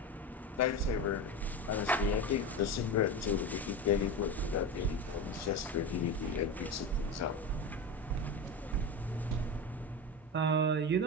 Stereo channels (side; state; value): both; normal; correlation 0.23